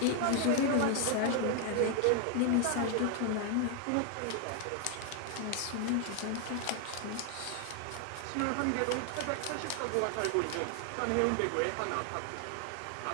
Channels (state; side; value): different; both; correlation 0.00